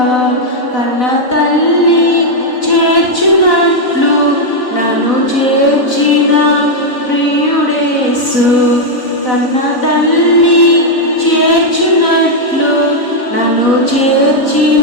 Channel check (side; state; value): right; late; 4.0 ms